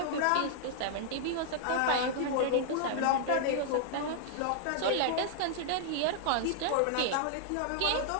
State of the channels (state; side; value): different; both; correlation -0.01